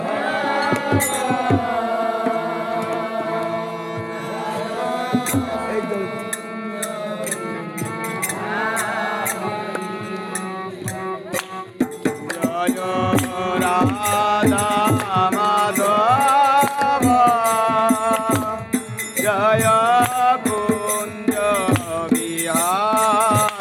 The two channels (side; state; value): both; identical; correlation 1.00